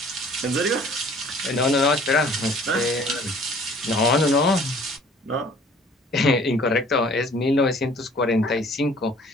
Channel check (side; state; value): both; normal; correlation 0.53